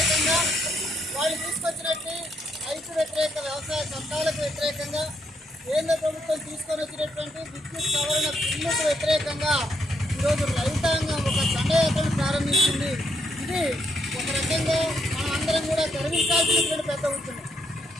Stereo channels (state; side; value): normal; both; correlation 0.76